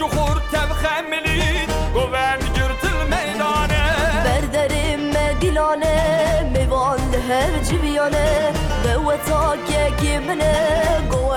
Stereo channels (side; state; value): both; identical; correlation 1.00